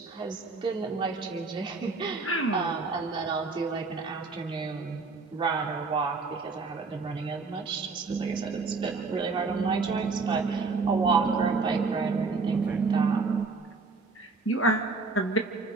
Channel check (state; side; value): quieter; left; 4.2 dB